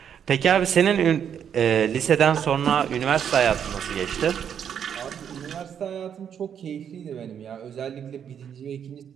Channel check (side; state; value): left; quieter; 8.4 dB